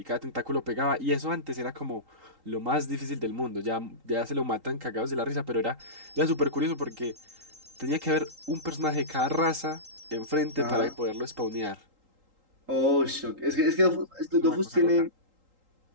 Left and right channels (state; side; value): late; left; 3.8 ms